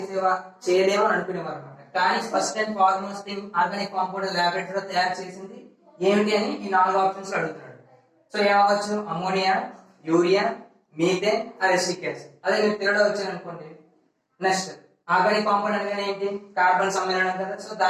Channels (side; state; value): both; identical; correlation 1.00